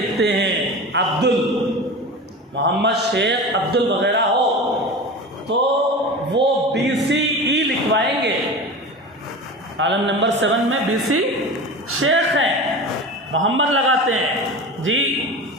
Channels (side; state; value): both; normal; correlation 0.31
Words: ہیں، محمد شیخ عبدل وغیرہ ہو، تو وہ بی سی ای لکھوائیں گے۔ کالم نمبر 7 میں بی سی شیخ ہیں، محمد لگاتے ہیں جی۔